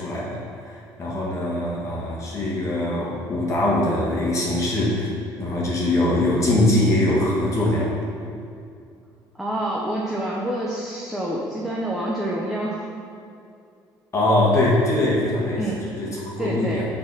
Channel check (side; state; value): both; normal; correlation 0.54